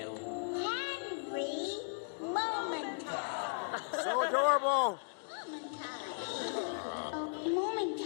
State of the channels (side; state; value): right; silent; digital silence